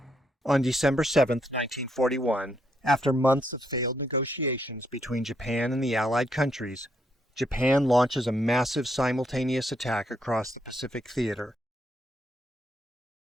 On December 7, 1941, after months of failed negotiations between Japan and the Allied countries, Japan launches a massive simultaneous attack across the Pacific theater.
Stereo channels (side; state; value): both; normal; correlation 0.76